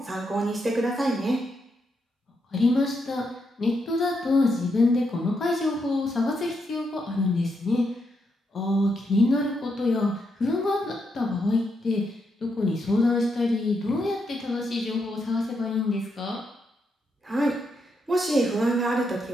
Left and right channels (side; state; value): both; normal; correlation 0.81